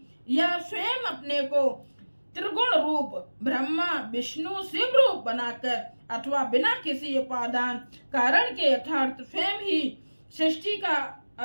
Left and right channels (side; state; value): both; inverted; correlation -1.00